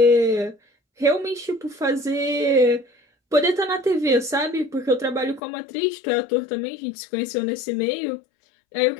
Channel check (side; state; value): right; drops out; at 5.4 s